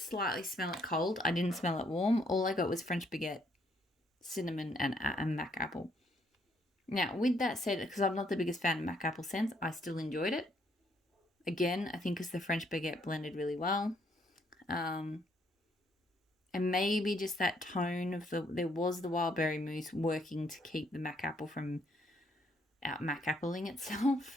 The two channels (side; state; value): both; normal; correlation 0.70